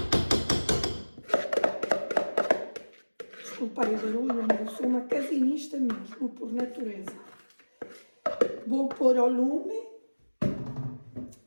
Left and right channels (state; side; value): inverted; both; correlation -1.00